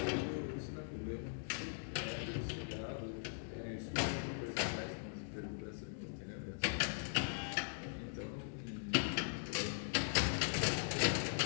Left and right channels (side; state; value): right; silent; digital silence